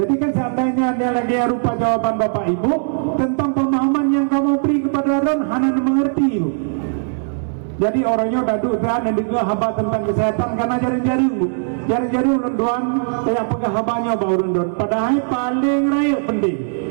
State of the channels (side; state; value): left; silent; digital silence